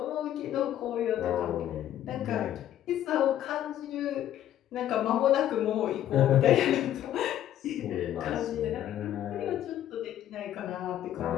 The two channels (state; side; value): quieter; right; 11.7 dB